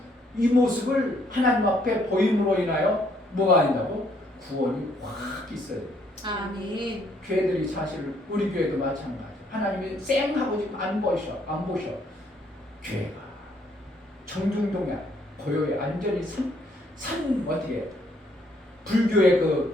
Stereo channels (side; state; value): both; normal; correlation 0.68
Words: 이 모습을 하나님 앞에 보임으로 인하여 뭐가 아니다고? 구원이 확 있어요. 아멘. 교회들이 사실 우리 교회도 마찬가지. 하나님이 쌩하고 지금 안 보셔. 교회가 정중동에 고요에 안전히 산 어디에 불교의